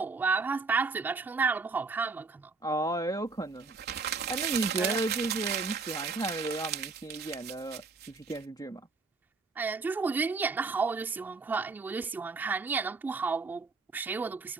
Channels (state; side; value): quieter; left; 4.1 dB